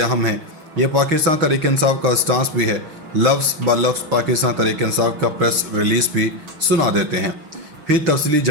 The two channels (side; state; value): left; late; 6.2 ms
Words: हैं। ये पाकिस्तान तहरीक इंसाफ का स्टांस भी है। लफ्ज़ ब लफ्ज़ पाकिस्तान तहरीक इंसाफ का प्रेस रिलीज़ भी सुना देते हैं। फिर तफसीली